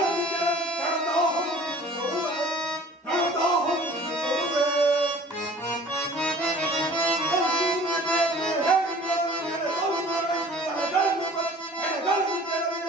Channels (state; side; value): normal; both; correlation 0.48